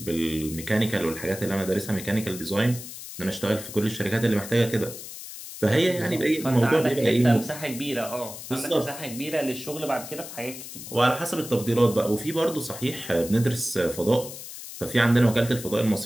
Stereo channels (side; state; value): left; noise; hiss, 12 dB below the sound